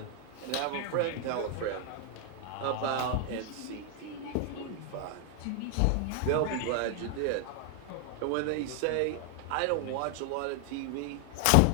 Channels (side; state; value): both; different; correlation 0.00